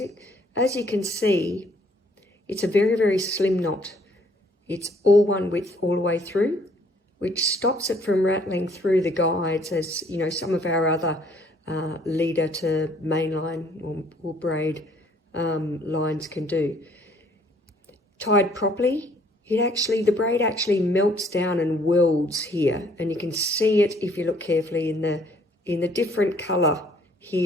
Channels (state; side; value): normal; both; correlation 0.62